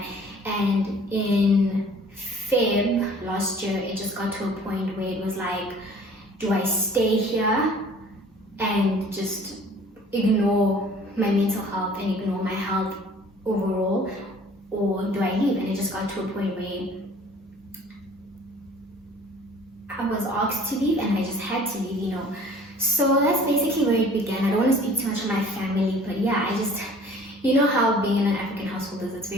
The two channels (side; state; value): both; normal; correlation 0.51